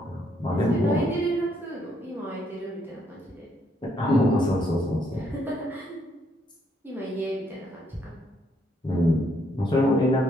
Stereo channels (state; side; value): normal; both; correlation 0.72